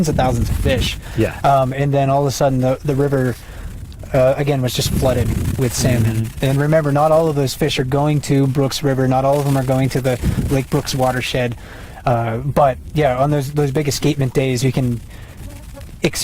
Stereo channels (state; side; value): identical; both; correlation 1.00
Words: thousands of fish. Yeah. And then all of a sudden the river, again, was just flooded with salmon. And remember, not all of those fish are going to Brooks River. Not all of them are going to the Lake Brooks watershed. But yeah, on those big escapement days, you can